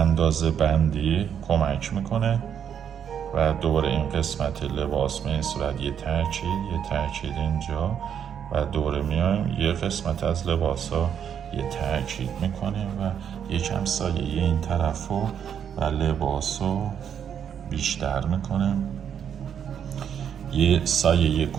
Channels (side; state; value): left; quieter; 8.4 dB